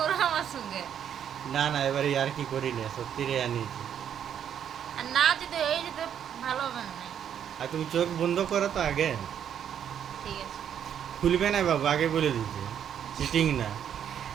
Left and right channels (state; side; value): quieter; left; 9.0 dB